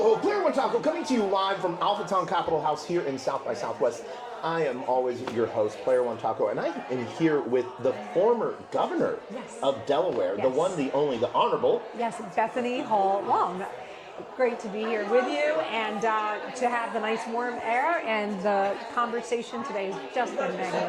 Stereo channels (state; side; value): identical; both; correlation 1.00